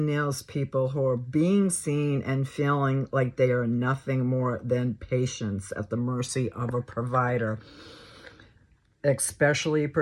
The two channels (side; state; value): both; identical; correlation 1.00